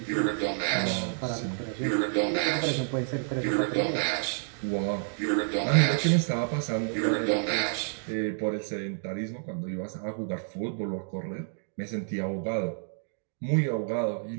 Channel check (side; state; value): left; silent; digital silence